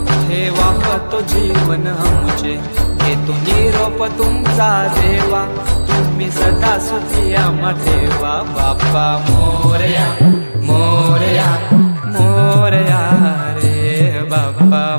ठेवा तो जीवन आमचे घेतो निरोप तुमचा देवा तुम्ही सदा सुखी आम्हा ठेवा बाप्पा मोरया मोरया मोरया रे बाप्पा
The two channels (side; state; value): both; inverted; correlation -1.00